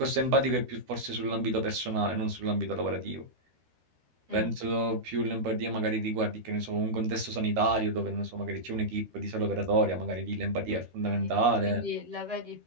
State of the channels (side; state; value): left; late; 13 ms